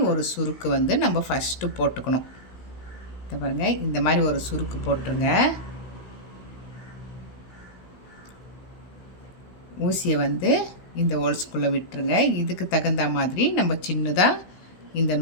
ஒரு சுருக்கு வந்து நம்ம ஃபஸ்ட்டு போட்டுக்கணும். இதை பாருங்கள், இந்த மாதிரி ஒரு சுருக்கு போட்டுருங்க. ஊசியை வந்து இந்த ஹோல்ஸ்குள்ளே விட்டுருங்க. இதுக்கு தகுந்த மாதிரி நம்ம சின்னதாக இந்த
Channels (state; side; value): late; right; 16 ms